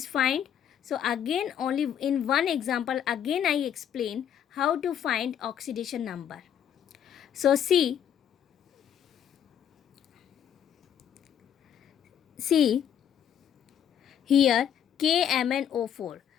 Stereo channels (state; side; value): quieter; right; 9.2 dB